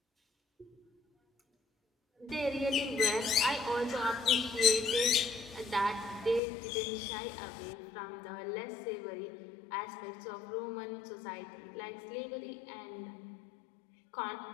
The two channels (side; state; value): right; drops out; at 6.4 s